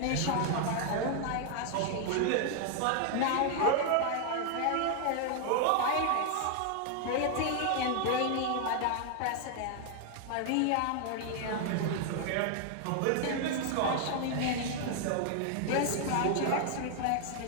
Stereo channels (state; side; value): different; both; correlation 0.00